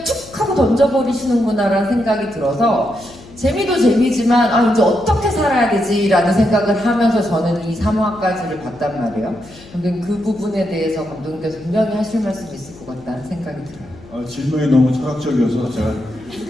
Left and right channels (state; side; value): noise; left; hum, 21 dB below the sound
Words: 툭 하고 던져버리시는구나라는 생각이 들어서 재미도 재미지만 아 이제 어떻게 살아야 되지라는 생각을 하면서 저는 이 3화까지를 봤단 말이에요. 근데 그 부분에 대해서 감독님께서 분명히 하실 말씀이 있을 것 같다는 생각이 들어요. 질문이 너무 철학적이어서 제가